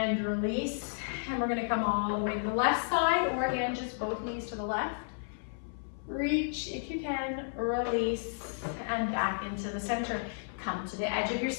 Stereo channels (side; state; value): right; silent; 56 dB below the other